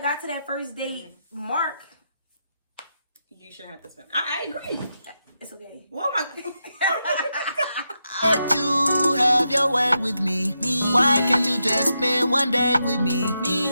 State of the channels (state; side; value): inverted; both; correlation -0.85